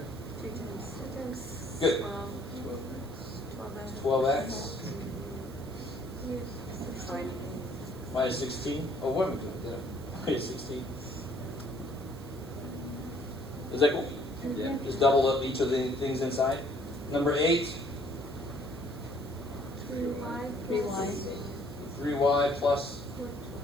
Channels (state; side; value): noise; right; hiss, 22 dB below the sound